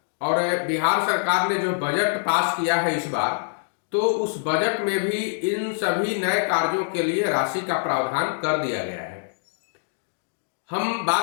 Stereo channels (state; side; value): silent; right; digital silence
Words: और बिहार सरकार ने जो बजट पास किया है इस बार, तो उस बजट में भी इन सभी नए कार्यों के लिए राशि का प्रावधान कर दिया गया है। हम